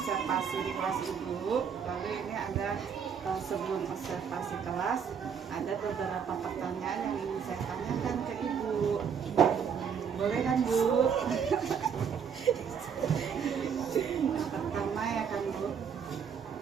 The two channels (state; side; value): quieter; left; 7.1 dB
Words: di kelas Ibu, lalu ini ada sebelum observasi kelas ada beberapa pertanyaan yang ingin saya tanyakan ke Ibu. Boleh kan, Bu? Pertama ya kan, Bu,